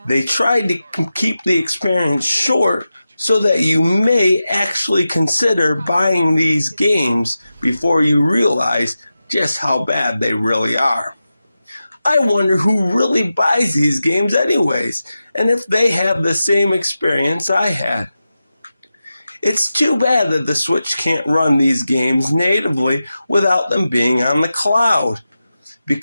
they tried to keep the experience short so that you may actually consider buying these games before you realize just how bad they really are. I wonder who really buys these games anyways, and if they have the same experience I had. It's too bad that the Switch can't run these games natively without them being on the cloud,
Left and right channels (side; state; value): both; inverted; correlation -0.92